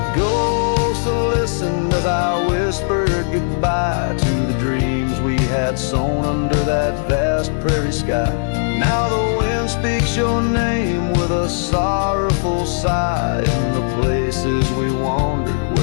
ghosts listened as I whispered goodbye to the dreams we had sown under that vast prairie sky. Now the wind speaks your name with a sorrowful sigh in the places we wandered,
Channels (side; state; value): right; silent; digital silence